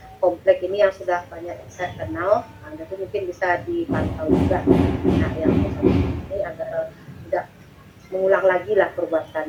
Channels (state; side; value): identical; both; correlation 1.00